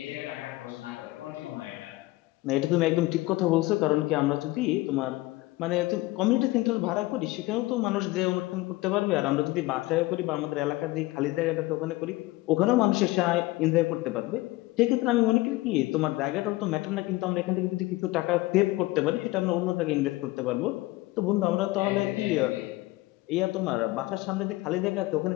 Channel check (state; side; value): quieter; right; 19.7 dB